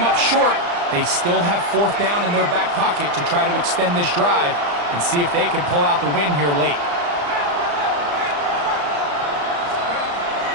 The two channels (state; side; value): late; left; 34 ms